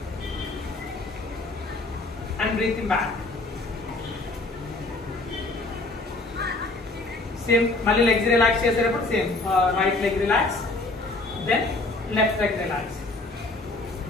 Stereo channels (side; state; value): right; quieter; 3.1 dB